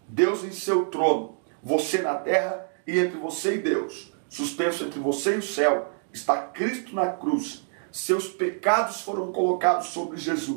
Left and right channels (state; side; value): silent; left; digital silence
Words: Deus em seu trono, você na terra e entre você e Deus, suspenso entre você e o céu, está Cristo na cruz. Seus pecados foram colocados sobre